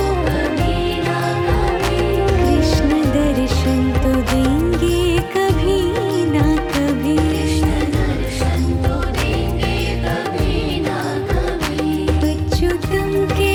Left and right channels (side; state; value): both; identical; correlation 1.00